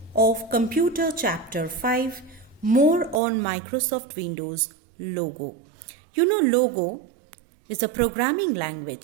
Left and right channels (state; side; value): drops out; left; at 3.2 s